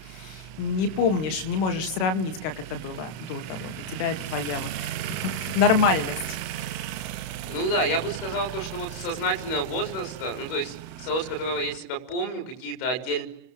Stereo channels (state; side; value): late; right; 32 ms